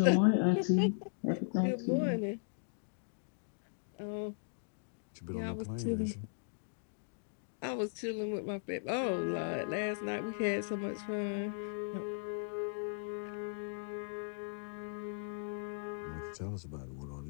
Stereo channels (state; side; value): silent; right; digital silence